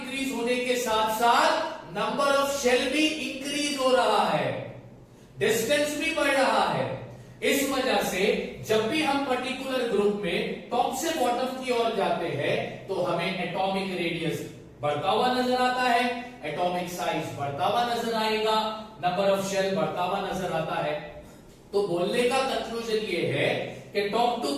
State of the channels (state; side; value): identical; both; correlation 1.00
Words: होने के साथ साथ नंबर ऑफ शेल भी इंक्रीज हो रहा है, डिस्टेंस भी बढ़ रहा है। इस वजह से जब भी हम पर्टिकुलर ग्रुप में टॉप से बॉटम की ओर जाते हैं तो हमें एटॉमिक रेडियस बढ़ता हुआ नजर आता है, एटॉमिक साइज बढ़ता हुआ नजर आएगा, नंबर ऑफ शेल बढ़ता हुआ नजर आता है। तो बोलने का कंक्लूजन ये है कि top to